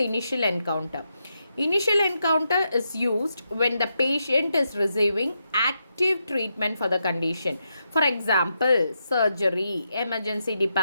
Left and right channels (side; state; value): both; inverted; correlation -0.84